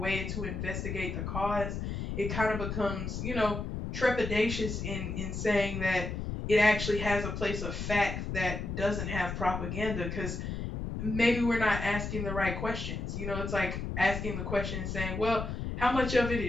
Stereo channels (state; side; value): noise; left; rumble, 4 dB below the sound